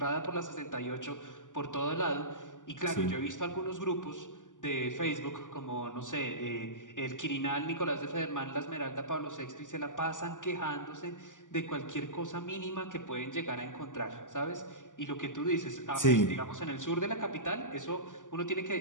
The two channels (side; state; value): right; late; 0.87 ms